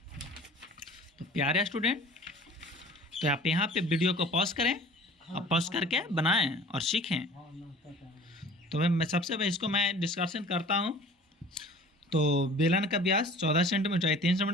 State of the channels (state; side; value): normal; both; correlation 0.46